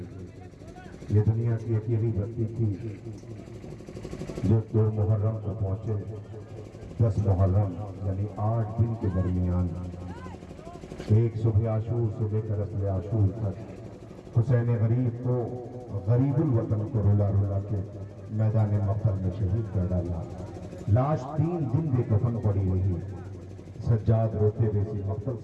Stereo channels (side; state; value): both; identical; correlation 1.00